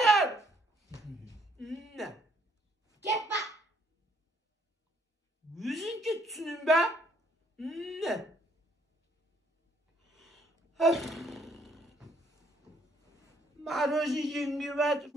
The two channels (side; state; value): both; normal; correlation 0.67